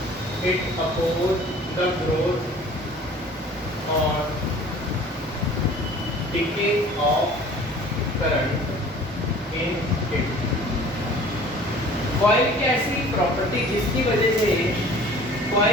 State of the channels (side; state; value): both; normal; correlation 0.47